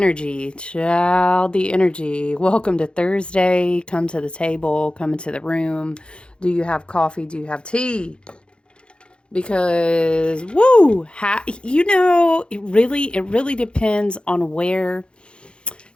child, the energy. Welcome to Thursday. Come to the table, come into the room. Do you have coffee? Do you have tea? Because woo, it really depends on where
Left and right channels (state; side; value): late; right; 0.055 ms